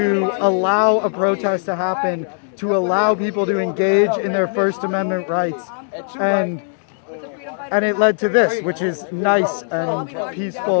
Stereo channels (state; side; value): silent; right; digital silence